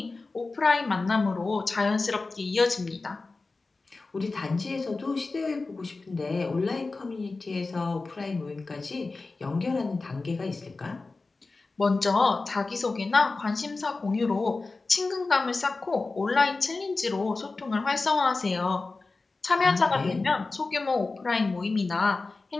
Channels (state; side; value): quieter; right; 3.7 dB